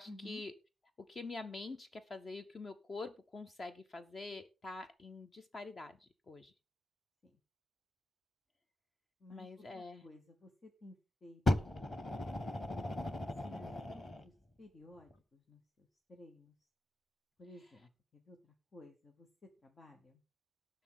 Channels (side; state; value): both; normal; correlation 0.89